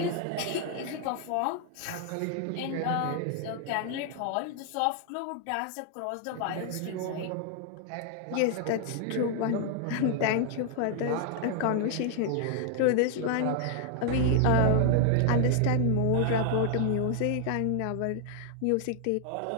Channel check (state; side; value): different; both; correlation 0.00